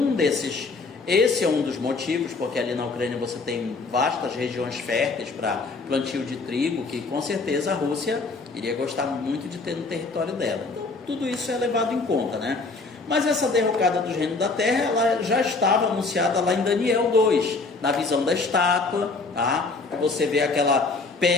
desses. Esse é um dos motivos, porque ali na Ucrânia você tem vastas regiões férteis para plantio de trigo, que com certeza a Rússia iria gostar muito de ter no território dela. Então, tudo isso é levado em conta, né? Mas essa derrocada dos reinos da terra, ela já estava anunciada lá em Daniel 2, na visão da estátua, tá? Você vê aquela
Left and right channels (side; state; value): right; quieter; 3.9 dB